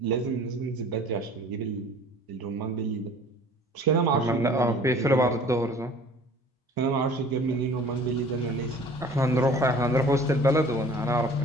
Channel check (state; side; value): normal; both; correlation 0.48